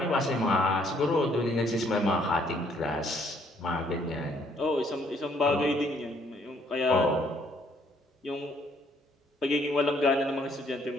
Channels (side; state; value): both; normal; correlation 0.66